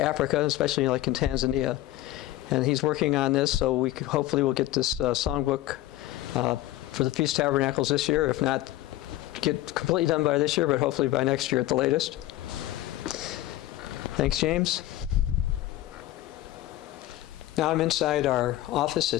Africa, especially like in Tanzania. And he's working on this, so we hopefully will get this songbook for the Feast of Tabernacles this year. If not, get completely done by this year, but hopefully by next year at the latest. Thanks, James. Now I'm inside our office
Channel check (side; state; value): right; quieter; 15.4 dB